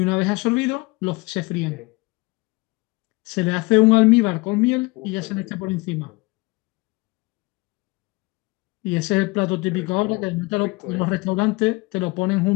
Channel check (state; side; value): quieter; right; 24.8 dB